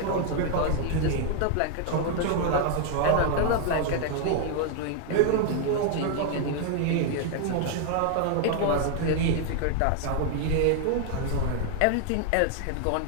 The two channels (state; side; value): different; both; correlation 0.00